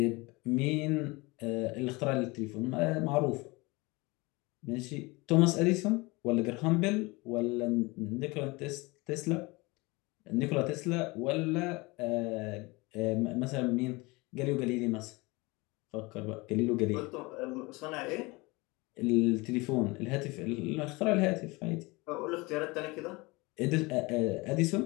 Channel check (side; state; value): right; quieter; 24.5 dB